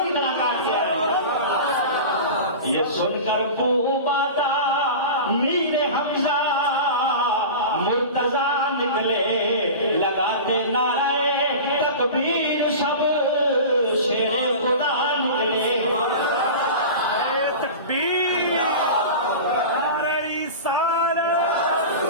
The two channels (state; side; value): inverted; both; correlation -0.31